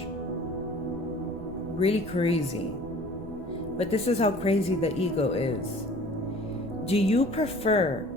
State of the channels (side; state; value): right; noise; rumble, 14 dB below the sound